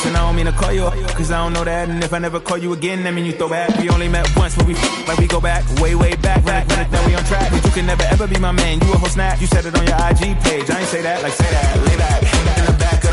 I don't mean to call you up, cause I don't know that. And if I never call you again, that mean you throw back. We only met once, but we like we go back, way back. Now we on track, but you can never ever be my man. You a whole snap, you said it on your IG page. I ain't say that, like say that, lay back. In the back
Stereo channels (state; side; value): identical; both; correlation 1.00